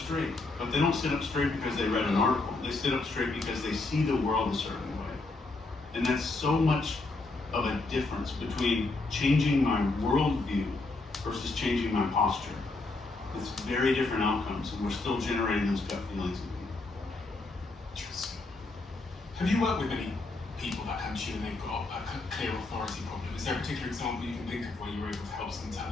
but they don't sit up straight because they read an article. They sit up straight because they see the world a certain way. And that's so much of a difference between changing my worldview versus changing my posture. It's very different outcomes, and we're still generating those gut feelings in people. Interesting. Have you worked with any people that come to you and they've got a clear authority problem? Is there a particular example you can think of where you were able to help them turn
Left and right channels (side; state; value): right; quieter; 3.4 dB